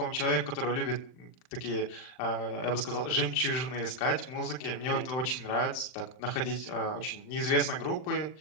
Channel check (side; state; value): right; late; 39 ms